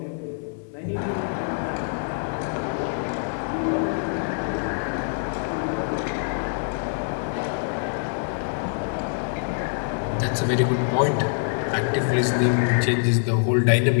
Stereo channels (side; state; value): right; silent; 61 dB below the other